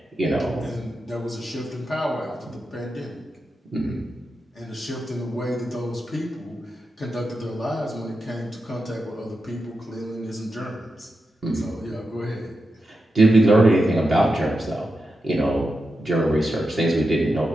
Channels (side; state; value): both; normal; correlation 0.89